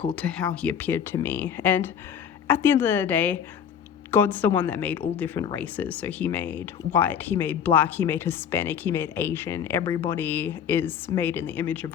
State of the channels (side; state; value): right; quieter; 8.2 dB